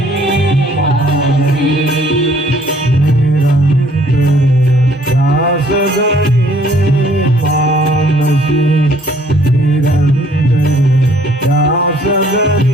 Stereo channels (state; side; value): normal; both; correlation 0.60